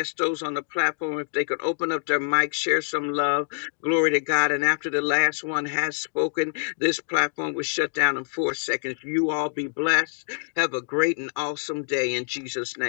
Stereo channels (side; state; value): right; silent; digital silence